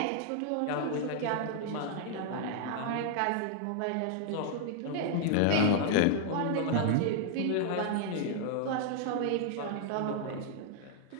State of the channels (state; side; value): different; both; correlation 0.00